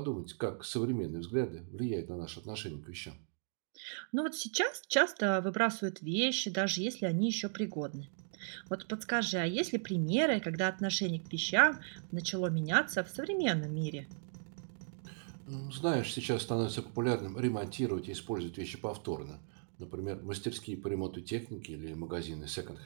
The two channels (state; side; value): silent; left; digital silence